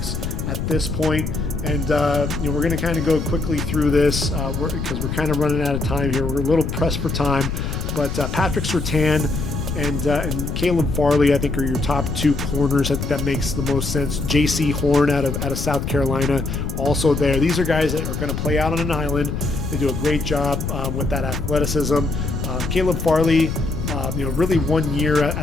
at this point. And we're going to kind of go quickly through this because we're kind of running out of time here. We're a little pressed for time. But Patrick Surtain and Caleb Farley, I think, are your top 2 corners. I think that makes the most sense. J.C. Horn out of South Carolina, also there. These are guys that are going to play out on an island. They do a great job with that athleticism. Caleb Farley, really 1 year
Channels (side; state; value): left; noise; rumble, 3 dB below the sound